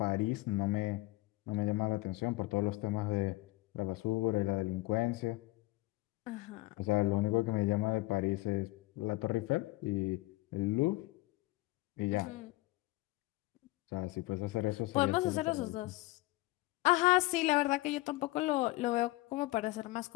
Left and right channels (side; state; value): right; quieter; 20.1 dB